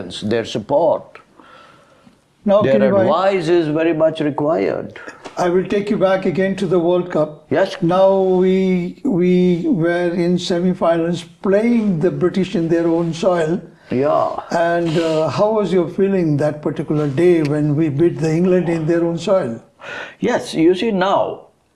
their support, Now, their Kirmani, advice is very much required. I will take you back again to the World Cup. Yes. Now we were in semi-finals playing the British in their own soil. Yeah. And how was your feeling that particular day when we beat the England in their own soil? Yes, you see now,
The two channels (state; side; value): identical; both; correlation 1.00